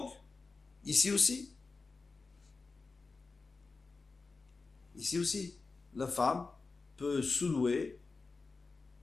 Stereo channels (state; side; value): quieter; right; 4.1 dB